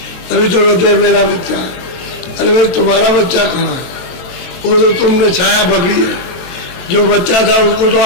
तभी तो कहते हैं मेरा बच्चा, अरे भाई तुम्हारा बच्चा कहाँ है? वो तो तुमने छाया पकड़ी है। जो बच्चा था उसको तो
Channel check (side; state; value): right; late; 22 ms